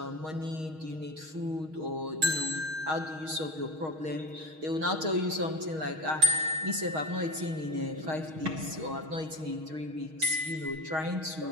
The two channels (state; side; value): late; left; 6.4 ms